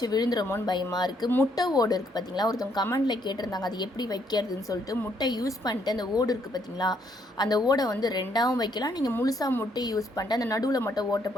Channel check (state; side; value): normal; both; correlation 0.71